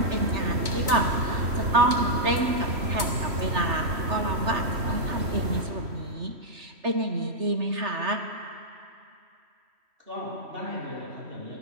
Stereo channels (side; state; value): left; late; 3.1 ms